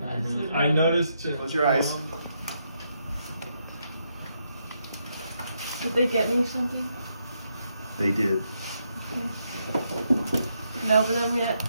done. I noticed. Close your eyes. Did they get me something? They did. Can I open them yet?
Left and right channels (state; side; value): inverted; both; correlation -0.79